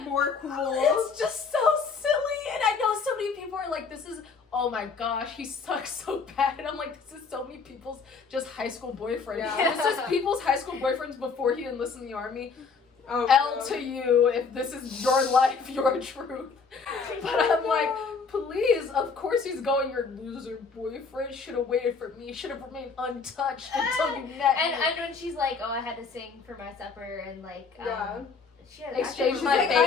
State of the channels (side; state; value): right; quieter; 5.1 dB